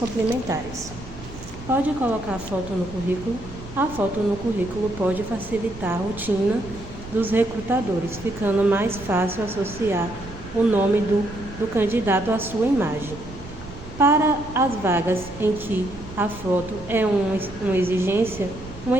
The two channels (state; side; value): noise; right; rumble, 15 dB below the sound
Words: Pode colocar a foto no currículo? A foto no currículo pode facilitar a rotina dos recrutadores, ficando mais fácil associar o nome do candidato à sua imagem. Para as vagas em que a foto é uma exigência, uma